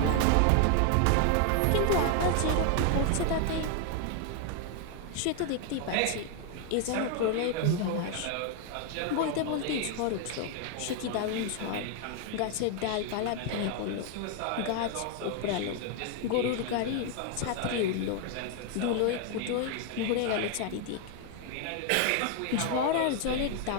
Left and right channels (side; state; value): both; different; correlation 0.00